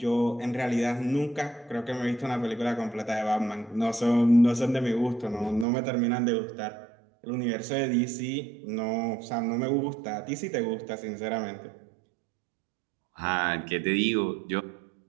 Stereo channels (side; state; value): left; drops out; at 5.7 s